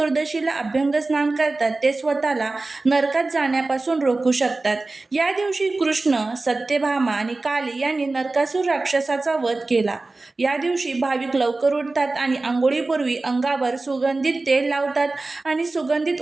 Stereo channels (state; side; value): quieter; left; 3.3 dB